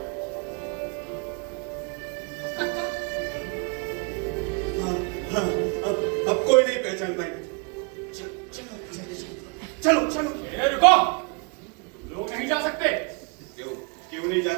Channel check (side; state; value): left; quieter; 32.7 dB